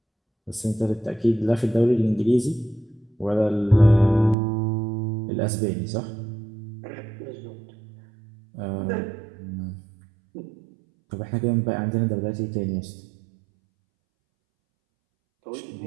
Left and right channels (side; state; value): left; drops out; at 4.4 s